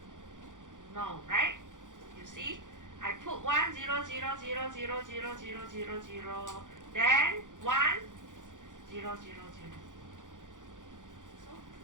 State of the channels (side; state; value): left; late; 0.87 ms